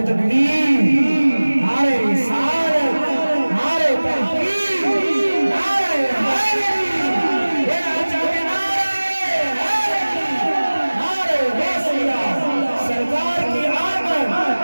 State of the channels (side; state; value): both; inverted; correlation -1.00